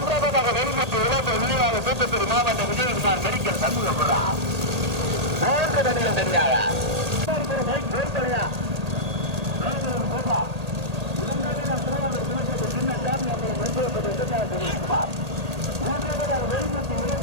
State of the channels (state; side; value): late; left; 1.8 ms